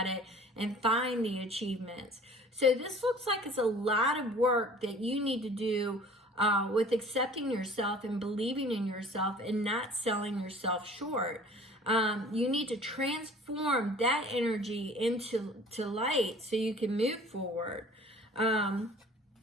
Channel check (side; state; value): both; normal; correlation 0.48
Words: it and find the achievements. So this looks like it's a lot of work that you need to do with accepting yourself and believing in yourself and not selling yourself short. You need to transform that energy into light so you can move forward.